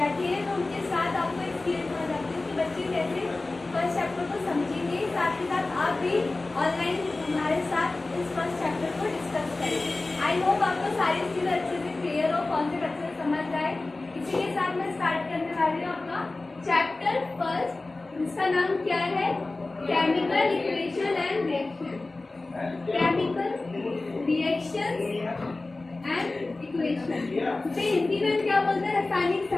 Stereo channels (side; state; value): right; quieter; 3.2 dB